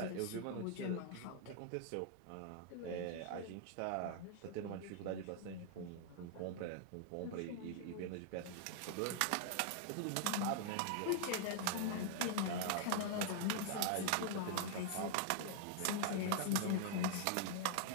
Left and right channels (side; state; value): both; different; correlation -0.01